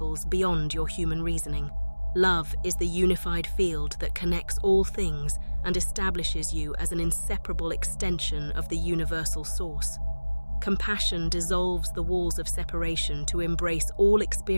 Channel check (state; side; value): inverted; both; correlation -1.00